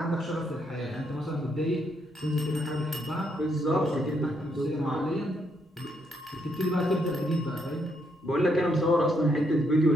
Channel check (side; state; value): both; normal; correlation 0.76